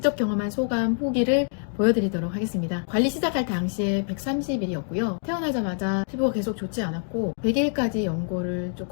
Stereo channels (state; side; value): silent; right; 61 dB below the other